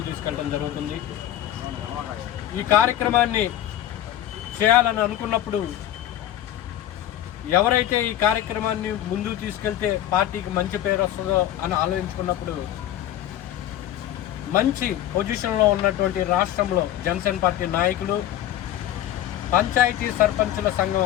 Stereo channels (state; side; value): quieter; right; 12.3 dB